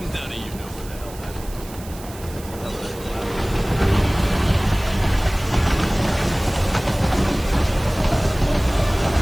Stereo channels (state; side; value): noise; right; hiss, 18 dB below the sound